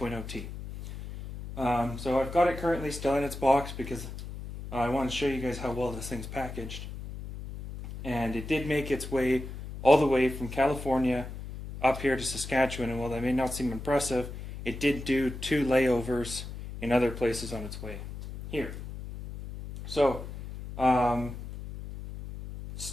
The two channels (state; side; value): noise; left; hum, 10 dB below the sound